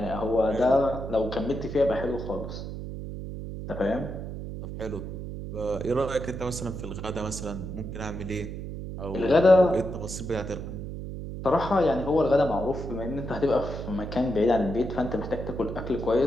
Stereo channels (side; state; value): right; noise; hum, 7 dB below the sound